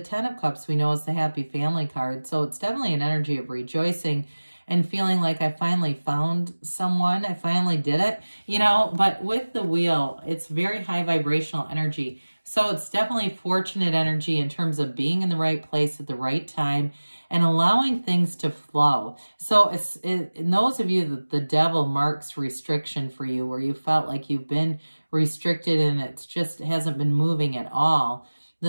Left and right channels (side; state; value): both; inverted; correlation -1.00